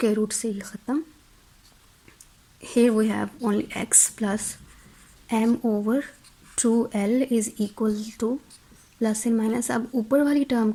रूट से ये ख़त्म, here we have only x plus m over 2l is equal to plus and minus. अब ऊपर वाली टर्म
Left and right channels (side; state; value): both; identical; correlation 1.00